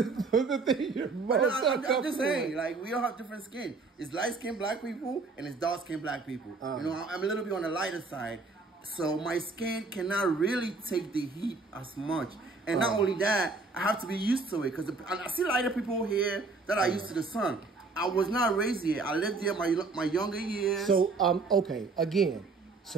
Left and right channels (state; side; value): quieter; left; 3.9 dB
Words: thing you're most uncomfortable I'm just saying, like, we all have different skin. It's light-skinned black people and it's dark-skinned black people. I'm a little bit on the lighter side, so my skin cannot really take the heat as much. And not only that, I have to be used to it, because I see lighter people here that are used to the sun. I was not raised here. I lived here my younger years. So, okay, again,